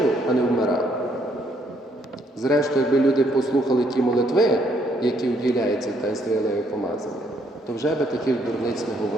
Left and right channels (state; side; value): normal; both; correlation 0.70